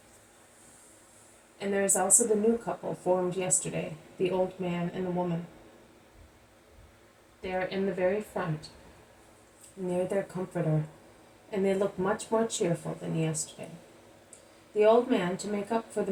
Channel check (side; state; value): both; identical; correlation 1.00